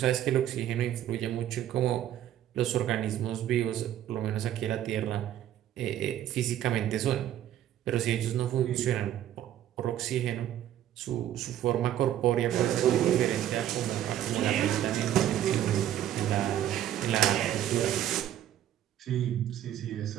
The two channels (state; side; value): quieter; left; 11.6 dB